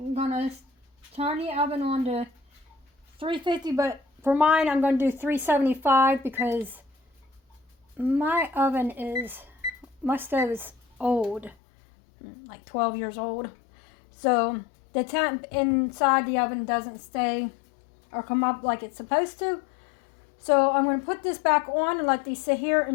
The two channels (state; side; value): drops out; right; at 11.6 s